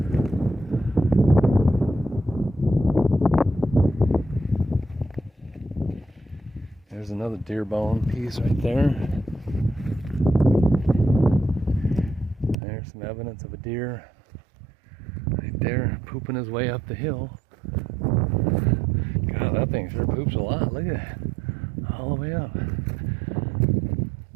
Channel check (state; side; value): drops out; left; at 12.6 s